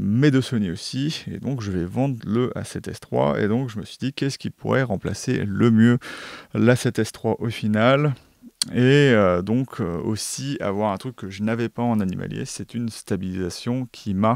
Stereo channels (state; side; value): identical; both; correlation 1.00